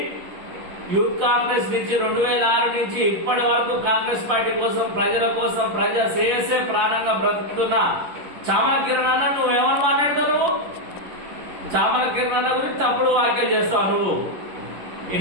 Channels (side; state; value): left; late; 11 ms